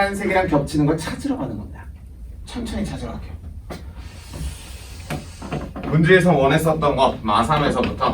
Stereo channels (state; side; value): identical; both; correlation 1.00